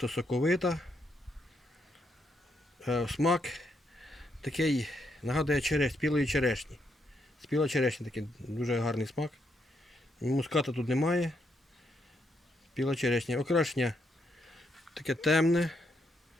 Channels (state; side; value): normal; both; correlation 0.78